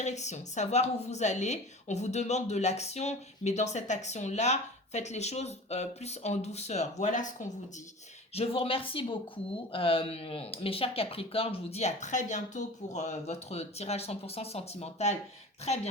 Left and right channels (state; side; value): normal; both; correlation 0.37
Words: savoir où vous allez. On vous demande de l'action, mais dans cette action-là, faites les choses plus en douceur. Voilà ce qu'on vous dit. Je vous remercie beaucoup, mes chers Capricornes. Je vous dis à très bientôt pour votre tirage 100% sentimental. Très